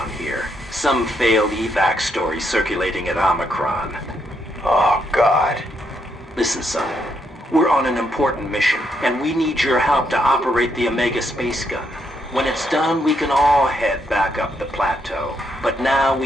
here. Some failed evac story circulating at Omicron. Oh, God. Listen, son. We're on an important mission, and we need your help to operate the Omega space gun. When it's done, we can all head back up the plateau. But now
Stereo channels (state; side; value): normal; both; correlation 0.77